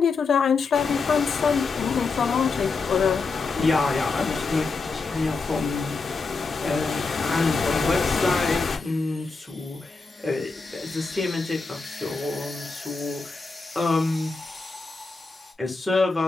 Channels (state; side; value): quieter; right; 4.2 dB